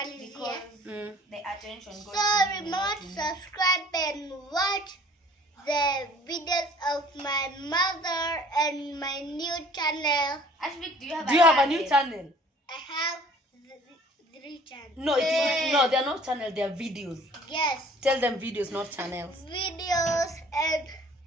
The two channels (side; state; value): both; normal; correlation 0.53